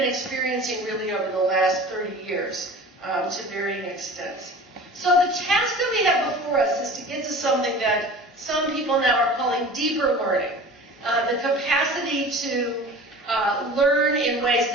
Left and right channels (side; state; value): both; normal; correlation 0.40